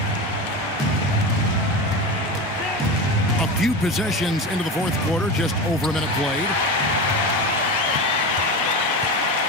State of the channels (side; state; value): both; normal; correlation 0.24